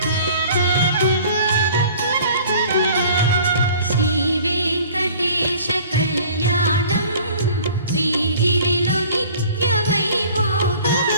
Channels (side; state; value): both; inverted; correlation -0.49